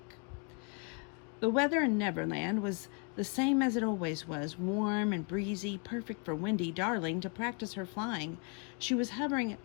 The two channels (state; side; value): quieter; right; 36.0 dB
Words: The weather in Neverland was the same as it always was, warm and breezy, perfect for Wendy Darling to practice her flying. She was hovering